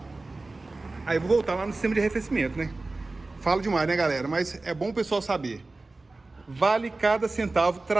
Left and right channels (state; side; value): quieter; left; 3.3 dB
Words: aí eu vou voltar lá no sistema de arrefecimento, né? Falo demais, né, galera? Mas é bom o pessoal saber. vale cada centavo